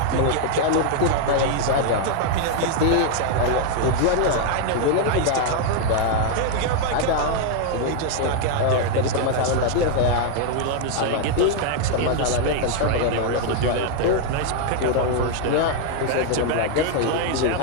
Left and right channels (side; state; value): both; different; correlation 0.00